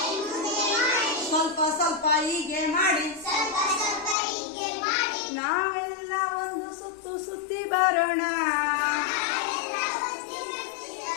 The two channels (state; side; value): drops out; right; at 4.2 s